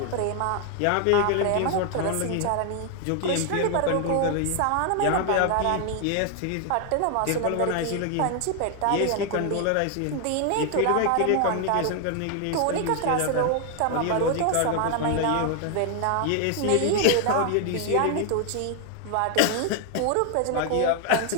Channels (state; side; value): different; both; correlation 0.00